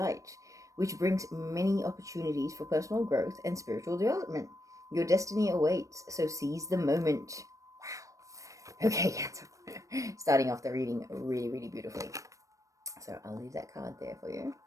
which brings many opportunities for personal growth and spiritual development. Your destiny awaits, so seize the moment. Wow. Okay, Cancer. Starting off the reading really, really beautifully. So I'll leave that card there for you.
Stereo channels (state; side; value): late; left; 0.16 ms